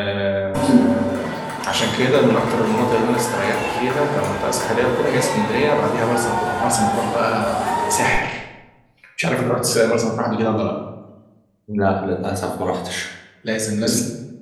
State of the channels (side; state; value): both; identical; correlation 1.00